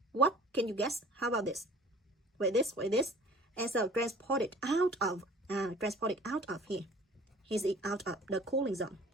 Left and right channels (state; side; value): normal; both; correlation 0.48